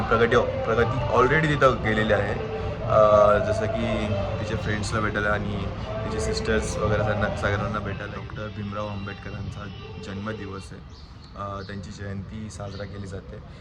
प्रगती ऑलरेडी तिथं गेलेली आहे. जसं की तिचे फ्रेंड्सला भेटायला आणि तिचे सिस्टर्स वगैरे सगळ्यांना भेटायला. डॉक्टर भीमराव आंबेडकरांचा जन्मदिवस आहे. त्यांची जयंती साजरा केली जाते.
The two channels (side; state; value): both; identical; correlation 1.00